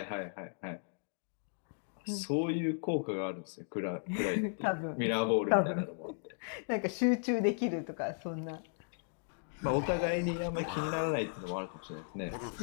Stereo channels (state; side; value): silent; right; digital silence